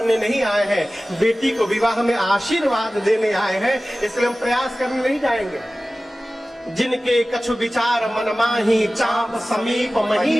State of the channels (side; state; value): both; normal; correlation 0.97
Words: नहीं आए हैं, बेटी को विवाह में आशीर्वाद देने आए हैं, इसलिए हम प्रयास करने नहीं जाएंगे। जिनके कछु विचार मन माही, चाप समीप